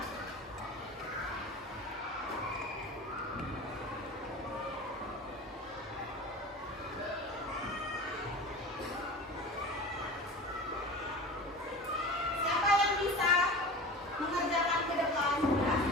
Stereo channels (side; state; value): both; normal; correlation 0.34